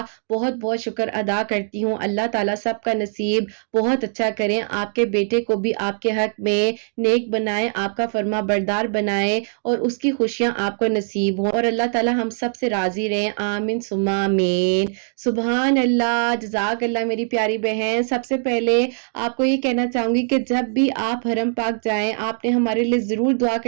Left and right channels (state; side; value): silent; left; digital silence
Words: بہت بہت شکر ادا کرتی ہوں، اللہ تعالیٰ سب کا نصیب بہت اچھا کریں، آپ کے بیٹے کو بھی آپ کے حق میں نیک بنائیں، آپ کا فرما بردار بنائیں اور اس کی خوشیاں آپ کو نصیب ہوں، اور اللہ تعالیٰ ہم سب سے راضی رہیں، آمین ثم آمین۔ سبحان اللہ، جزاک اللہ میری پیاری بہن۔ سب سے پہلے آپ کو یہ کہنا چاہوں چاہوں گی کہ جب بھی آپ حرم پاک جائیں آپ نے ہمارے لیے ضرور دعا